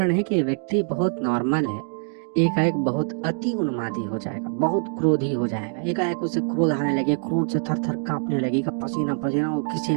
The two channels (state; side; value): silent; left; 62 dB below the other